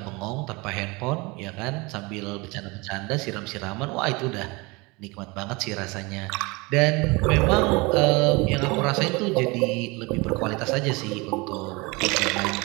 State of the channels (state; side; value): quieter; left; 25.7 dB